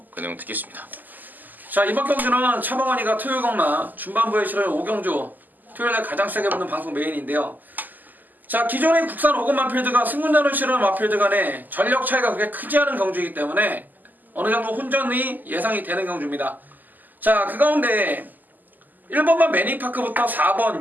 그 내용 듣겠습니다. 자, 이번 경주는 차범근이가 토요일경마 중반부에 실을 오경주 토요일날 가장 세게 붙는 방송 메인인데요. 자, 기존의 국산 5급 마필드가 승군전을 치르는 마필드 간의 전력 차이가 그렇게 크지 않은 경주이기 때문에 어느 정도 혼전이 예상이 되는 경주입니다. 자, 그 가운데 1번만 매니파크부터 4번,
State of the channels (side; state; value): left; late; 0.085 ms